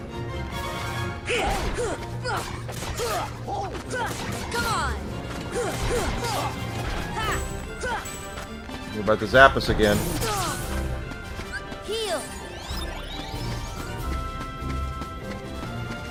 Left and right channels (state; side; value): identical; both; correlation 1.00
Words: Come on. You're about to zap us again. Heal.